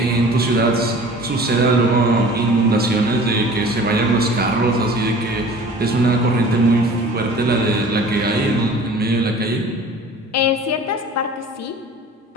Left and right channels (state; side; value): normal; both; correlation 0.44